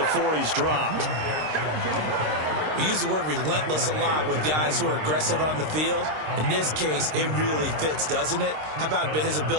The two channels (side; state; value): left; late; 26 ms